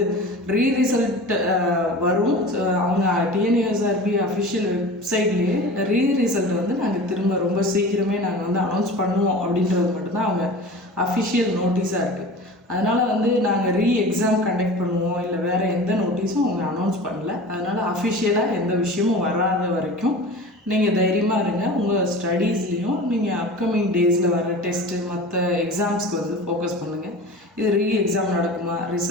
ரிசல்ட் வரும். அவங்க டிஎன்யூஎஸ்ஆர்பி அஃபிஷியல் வெப்சைட்லேயே ரிசல்ட் வந்து நாங்கள் திரும்ப ரொம்ப சீக்கிரமே நாங்கள் வந்து அனௌன்ஸ் பண்ணுவோம் அப்படின்றது மட்டும்தான் அவங்க அஃபிஷியல் நோட்டீஸாக இருக்குது. அதனால் வந்து நாங்கள் எக்ஸாம் கண்டக்ட் பண்ணுவோம் இல்லை வேறு எந்த நோட்டீஸும் அவங்க அனௌன்ஸ் பண்ணல. அதனால் அஃபிஷியலாக எந்த விஷயமும் வராத வரைக்கும் நீங்கள் தைரியமாக இருங்க. உங்கள் ஸ்டடீஸ்லேயும் நீங்கள் அப்கமிங் டேஸில் வர டெஸ்ட்டு மற்ற எக்ஸாம்ஸ்க்கு வந்து ஃபோக்கஸ் பண்ணுங்கள். இது எக்ஸாம் நடக்குமா,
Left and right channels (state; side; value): normal; both; correlation 0.36